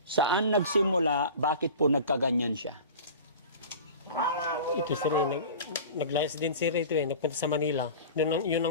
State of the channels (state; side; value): inverted; both; correlation -0.36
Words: saan nagsimula, bakit po nagkaganyan siya? Ito, sir, naglayas din, sir, ito nagpunta sa Manila. Yun